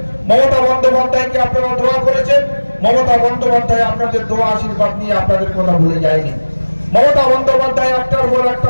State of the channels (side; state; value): both; inverted; correlation -1.00